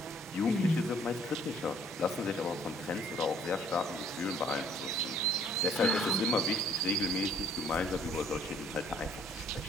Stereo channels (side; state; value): both; normal; correlation 0.59